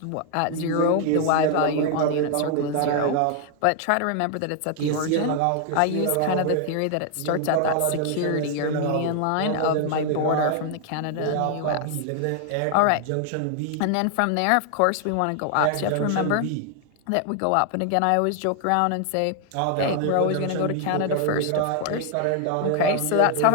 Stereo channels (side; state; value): both; different; correlation 0.00